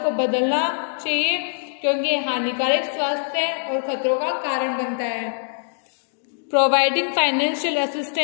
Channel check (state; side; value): silent; right; digital silence